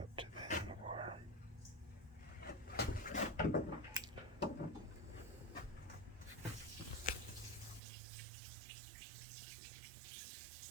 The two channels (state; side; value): drops out; left; at 7.8 s